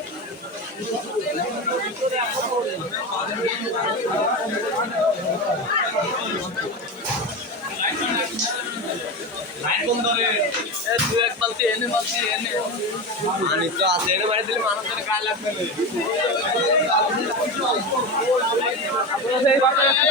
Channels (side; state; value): both; normal; correlation 0.21